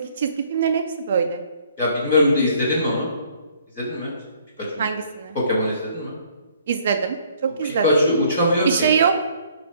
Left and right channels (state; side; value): inverted; both; correlation -0.60